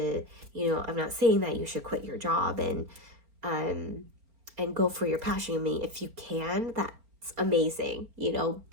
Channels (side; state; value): left; late; 4.4 ms